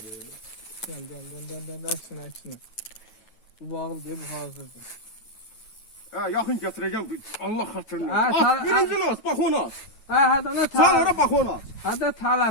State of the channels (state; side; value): late; right; 9.2 ms